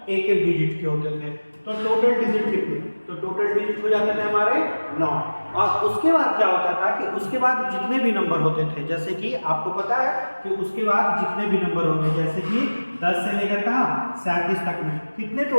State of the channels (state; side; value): inverted; both; correlation -1.00